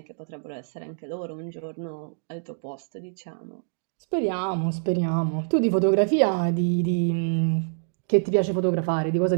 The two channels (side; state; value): left; silent; digital silence